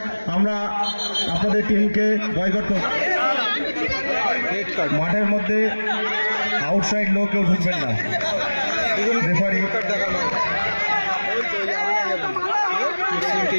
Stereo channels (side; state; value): both; inverted; correlation -1.00